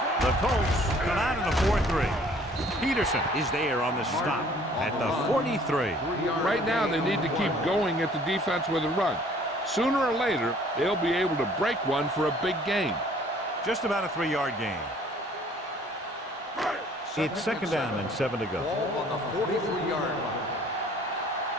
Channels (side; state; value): both; normal; correlation 0.56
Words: The Colts come out in a 4-3. Peterson is there on the stop at the 43. Right now, they need to keep going at the defense with a run. Sooner or later, they'll be able to break one for a big gain. Just about a 3-yard gain. It's second down and 7 to go. Ball on the 43-yard line.